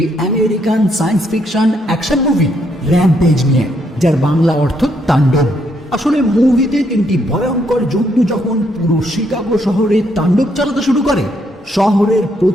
American science fiction action movie rampage নিয়ে, যার বাংলা অর্থ তাণ্ডব। আসলে মুভিতে তিনটি ভয়ঙ্কর জন্তু যখন পুরো শিকাগো শহরে তাণ্ডব চালাতে শুরু করে, শহরের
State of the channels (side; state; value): both; normal; correlation 0.74